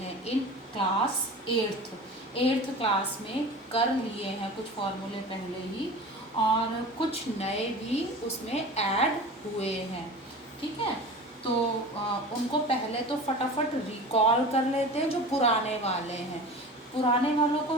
इन क्लास एट्थ क्लास में कर लिए हैं कुछ फार्मूले पहले ही, और कुछ नए भी उसमें ऐड हुए हैं। ठीक है, तो उनको पहले तो फटाफट रिकॉल कर लेते हैं। जो पुराने वाले हैं, पुराने वालों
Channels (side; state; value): both; normal; correlation 0.35